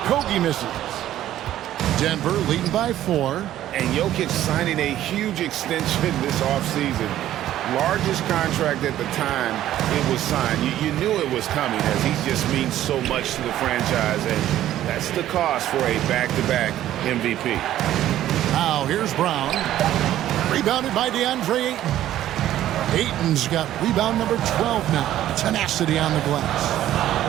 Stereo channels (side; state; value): left; quieter; 12.8 dB